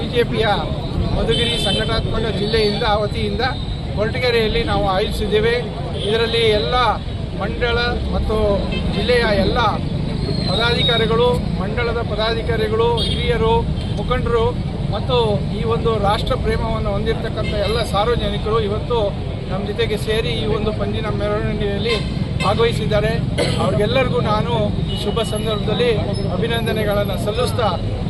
ಮಧುಗಿರಿ ಸಂಘಟನಾತ್ಮಕ ಜಿಲ್ಲೆಯಿಂದ ವತಿಯಿಂದ ಕೊರಟಗೆರೆಯಲ್ಲಿ ನಾವು ಆಯೋಜಿಸಿದ್ದೇವೆ. ಇದರಲ್ಲಿ ಎಲ್ಲ ಮಂಡಳ ಮತ್ತು ಜಿಲ್ಲೆಯ ಎಲ್ಲ ಪದಾಧಿಕಾರಿಗಳು, ಮಂಡಳದ ಪದಾಧಿಕಾರಿಗಳು, ಹಿರಿಯರು, ಮುಖಂಡರು ಮತ್ತು ಈ ಒಂದು ರಾಷ್ಟ್ರ ಪ್ರೇಮವನ್ನು ಹೊಂದಿರತಕ್ಕಂಥ ಎಲ್ಲ ಸಾರ್ವಜನಿಕರು ಇವತ್ತು ನಮ್ಮ ಜೊತೆಗೆ ಸೇರಿ ಈ ಒಂದು ಪಂಜಿನ ಮೆರವಣಿಗೆಯಲ್ಲಿ ಭಾಗವಹಿಸಿದ್ದಾರೆ. ಅವ್ರಿಗೆಲ್ಲರಿಗೂ ನಾನು ಈ ಶುಭ ಸಂದರ್ಭದಲ್ಲಿ ಅಭಿನಂದನೆಗಳನ್ನು ಸಲ್ಲಿಸ್ತಾ,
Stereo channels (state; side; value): identical; both; correlation 1.00